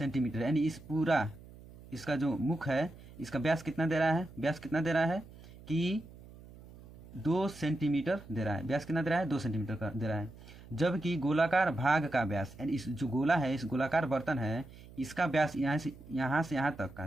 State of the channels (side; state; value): right; noise; hum, 19 dB below the sound